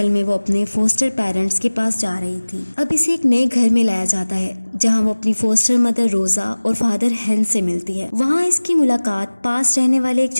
में वो अपने फोस्टर पेरेंट्स के पास जा रही थी। अब इसे एक नए घर में लाया जाता है जहां वो अपनी फोस्टर मदर रोजा और फादर हेंस से मिलती है। वहां इसकी मुलाकात पास रहने वाले एक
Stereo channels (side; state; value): both; inverted; correlation -1.00